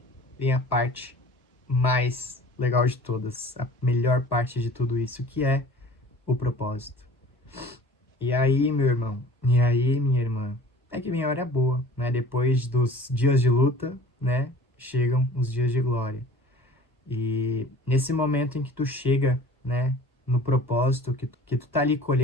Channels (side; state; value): both; normal; correlation 0.46